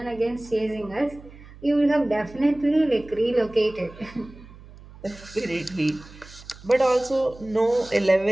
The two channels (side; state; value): right; noise; hum, 20 dB below the sound